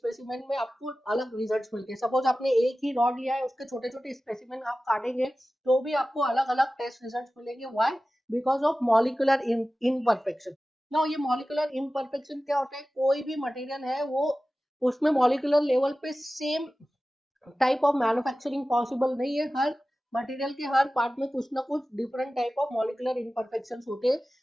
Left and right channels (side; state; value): both; normal; correlation 0.96